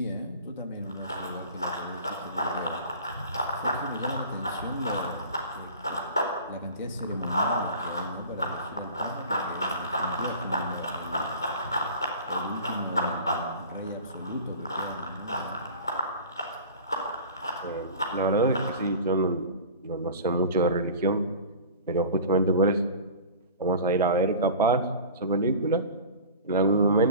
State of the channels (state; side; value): inverted; both; correlation -0.38